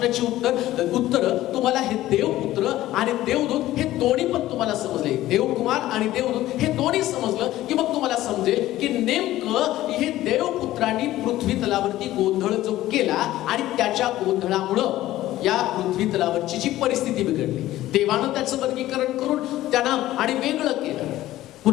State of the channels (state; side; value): quieter; right; 15.1 dB